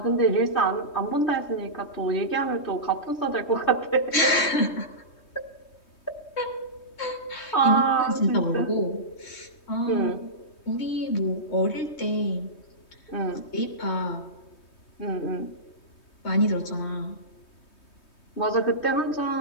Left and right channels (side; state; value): right; late; 3.2 ms